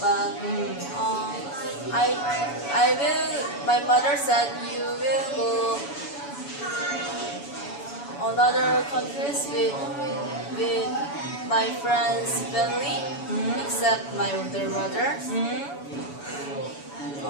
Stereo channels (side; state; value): right; late; 7.0 ms